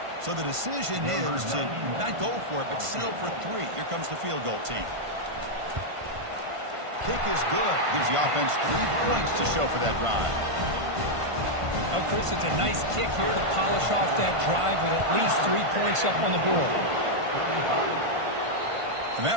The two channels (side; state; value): left; late; 1.5 ms